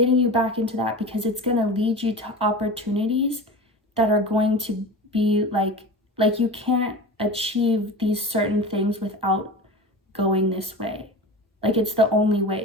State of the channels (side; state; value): both; normal; correlation 0.32